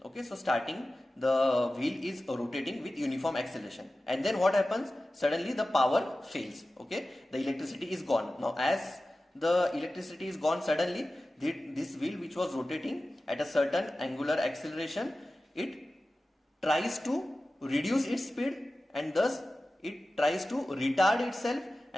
Okay, so starting the wheel is rotating with uniform acceleration, and then what happens? Suddenly the power fails. Okay, the electricity is gone. Now as the electricity is gone suddenly, this wheel which was rotating at a certain angular acceleration, it tries to reduce its speed, and thus it tries to retard itself,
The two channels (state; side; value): normal; both; correlation 0.95